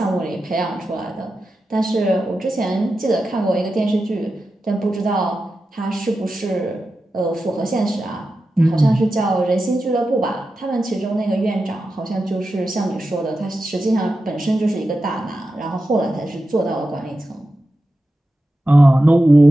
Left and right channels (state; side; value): normal; both; correlation 0.91